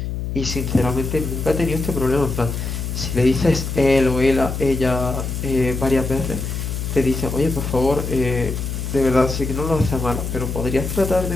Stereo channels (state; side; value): noise; left; hum, 4 dB below the sound